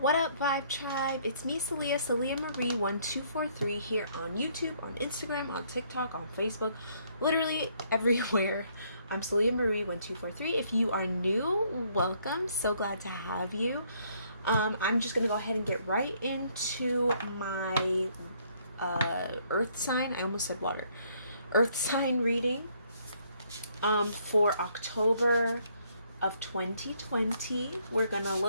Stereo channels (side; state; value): both; inverted; correlation -0.67